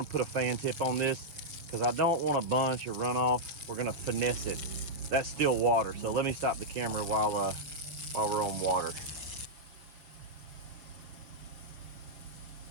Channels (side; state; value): left; late; 6.6 ms